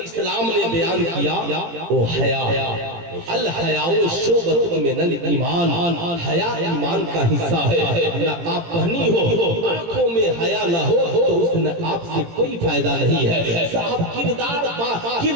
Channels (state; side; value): late; left; 18 ms